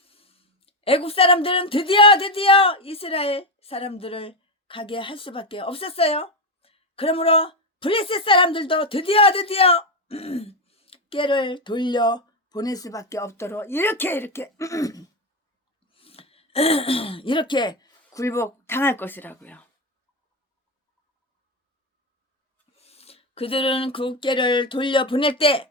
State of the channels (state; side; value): normal; both; correlation 0.11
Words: 애국 사람들은 드디어 이스라엘 사람들을 가게 할 수밖에 없었어요. 그러므로 블레셋 사람들도 드디어 꾀를 돌려 보낼 수밖에 없도록 이렇게 굴복 당할 것이라고요. 그들은 그 꾀를 돌려 보낼